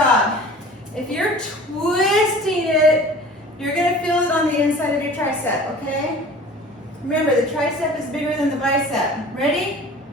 If you're twisting it, you're going to feel it on the inside of your tricep, okay? Remember, the tricep is bigger than the bicep. Ready?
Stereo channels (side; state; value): both; normal; correlation 0.43